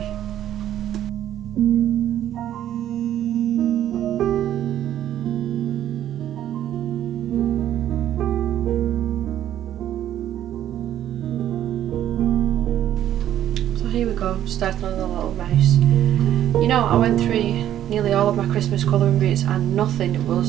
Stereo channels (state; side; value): quieter; left; 11.5 dB